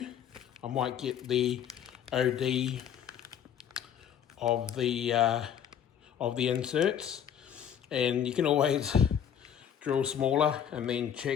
I might get the OD of the inserts, and you can always drill smaller and then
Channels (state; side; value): quieter; right; 9.0 dB